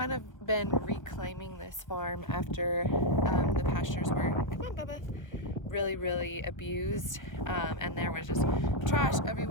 of been reclaiming this farm after the pastures were, come on Bubba, really abused, and there was just trash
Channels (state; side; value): late; right; 1.0 ms